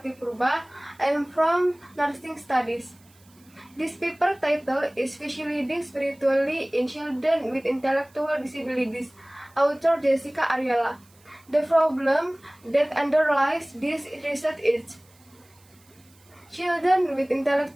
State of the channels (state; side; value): noise; right; hiss, 30 dB below the sound